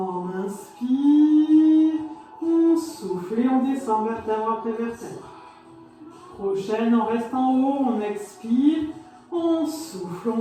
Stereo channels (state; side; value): identical; both; correlation 1.00